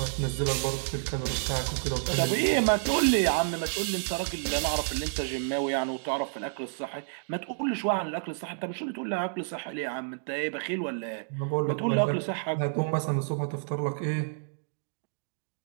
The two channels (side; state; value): left; silent; digital silence